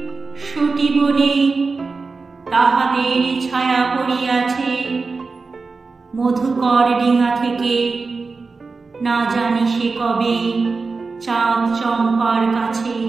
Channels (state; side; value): quieter; left; 4.3 dB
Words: সতী বনে তাহাদের ছায়া পড়িয়াছে। মধুকর ডিঙা থেকে না জানি সে কবে চাঁদ চম্পার কাছে।